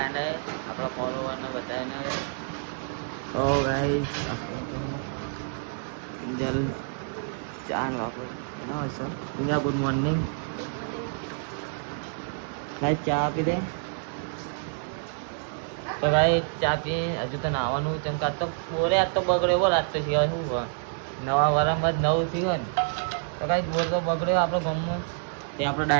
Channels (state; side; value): silent; left; digital silence